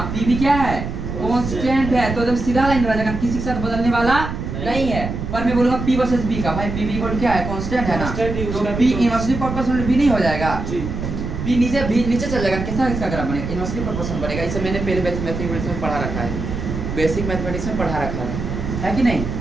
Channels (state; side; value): noise; right; rumble, 5 dB below the sound